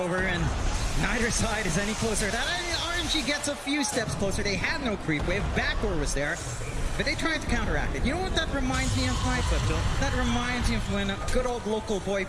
and neither side is any closer. That RNG gets a few steps closer. They had no creep wave. Backdoor was there, but they tried to counteract it. You know what that reminds me of, Mike? That reminds me of when a good old local boy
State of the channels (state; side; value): identical; both; correlation 1.00